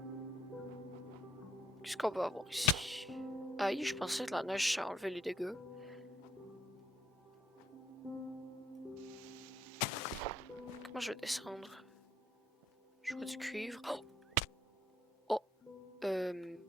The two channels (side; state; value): both; normal; correlation 0.68